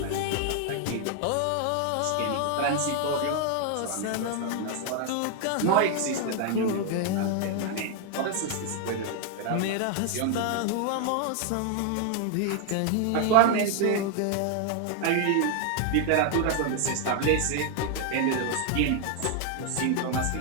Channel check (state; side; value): different; both; correlation 0.00